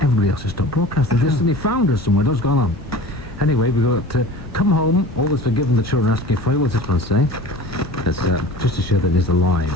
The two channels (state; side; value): normal; both; correlation 0.39